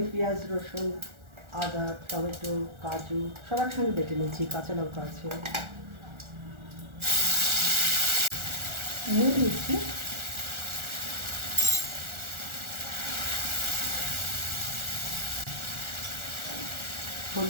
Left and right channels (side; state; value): left; late; 1.4 ms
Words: পেঁয়াজ, রসুন, আদা, টমেটো, কাজু সব একসঙ্গে বেটে নিচ্ছি, কাঁচা লঙ্কা আছে, নুন দিচ্ছি,